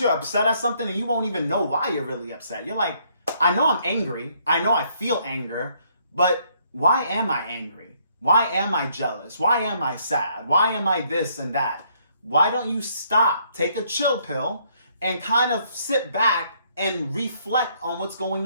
you're upset at something and you won't even know why you're really upset. You're like, I know I'm angry. I know I feel anger, but why am I angry? Why am I jealous? Why am I sad? Why am I this and that? Why don't you stop, take a chill pill, and kind of sit back and reflect on what's going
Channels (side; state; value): both; inverted; correlation -0.68